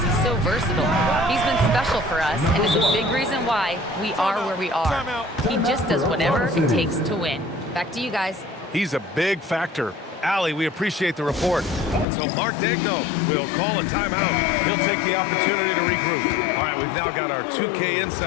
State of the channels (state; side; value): drops out; right; at 12.1 s